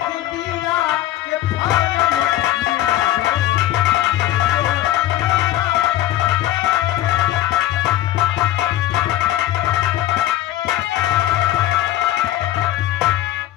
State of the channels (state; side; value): quieter; right; 13.8 dB